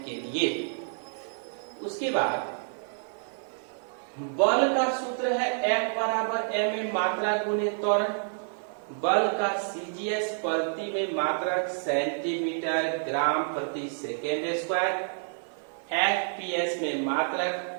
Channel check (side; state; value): left; silent; digital silence